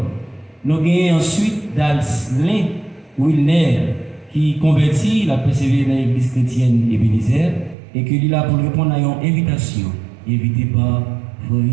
Donc, il y a ensuite Dalslin Wilner qui converti, il a persévéré dans l'église chrétienne Ebenezer et qu'il est là pour répondre à une invitation, invité par frère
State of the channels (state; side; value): drops out; left; at 7.8 s